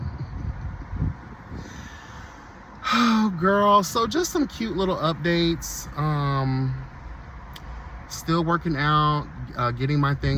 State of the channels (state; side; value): identical; both; correlation 1.00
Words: Oh, girl. So just some cute little updates. Still working out, getting my